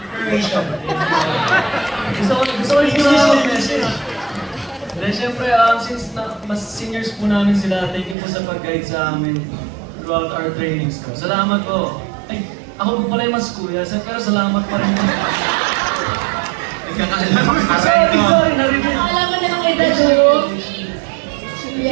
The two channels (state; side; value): drops out; left; at 8.2 s